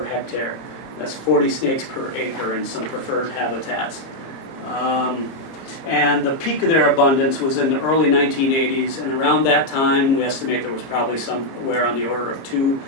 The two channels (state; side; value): late; right; 30 ms